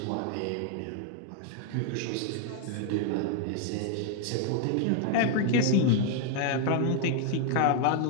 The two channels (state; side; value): different; both; correlation 0.00